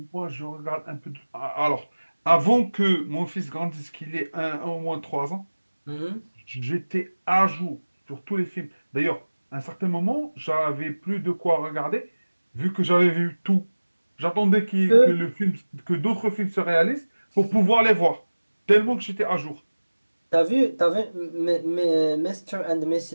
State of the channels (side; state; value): both; inverted; correlation -1.00